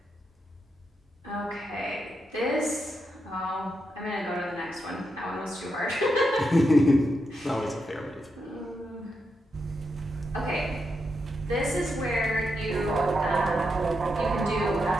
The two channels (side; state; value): both; normal; correlation 0.84